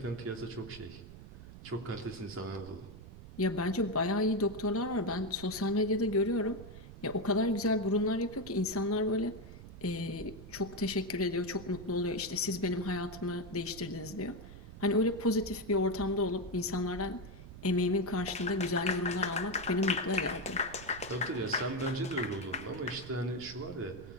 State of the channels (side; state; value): right; noise; rumble, 15 dB below the sound